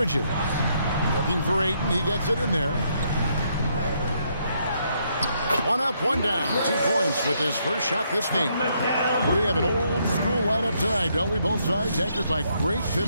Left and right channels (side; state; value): both; inverted; correlation -0.74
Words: Looking for Ayton. He gets it in there. One up, one down. 2 points with his first shot this game. We have an old school lineup tonight, don't we? Both sides anchored by great